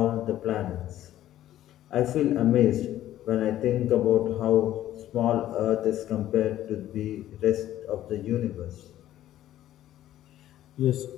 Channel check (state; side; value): quieter; right; 13.0 dB